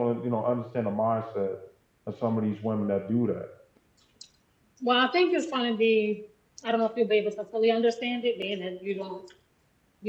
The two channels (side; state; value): both; identical; correlation 1.00